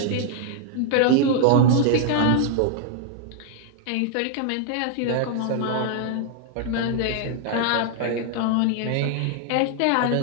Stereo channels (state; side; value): different; both; correlation 0.00